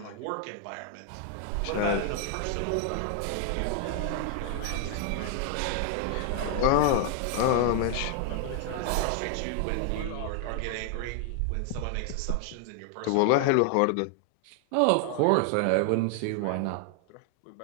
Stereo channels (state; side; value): different; both; correlation 0.00